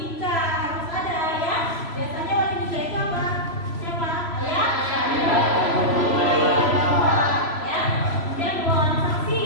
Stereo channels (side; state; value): right; late; 3.0 ms